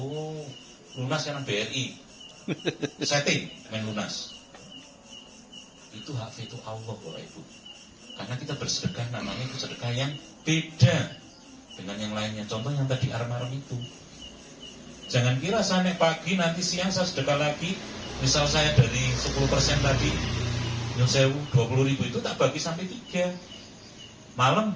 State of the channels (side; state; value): both; identical; correlation 1.00